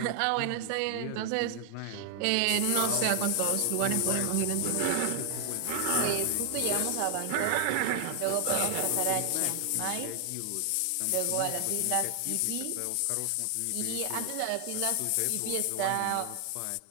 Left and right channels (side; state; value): both; different; correlation 0.00